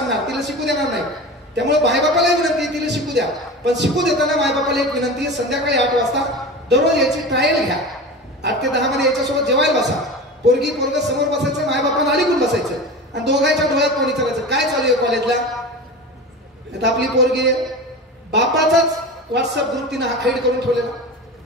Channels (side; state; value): both; normal; correlation 0.30